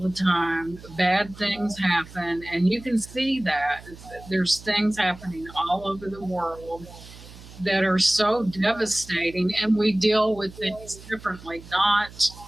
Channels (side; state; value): right; noise; hum, 18 dB below the sound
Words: time. Bad things happen, and you can see that. There's things happening all over the world that are so devastating, and we deal with things differently.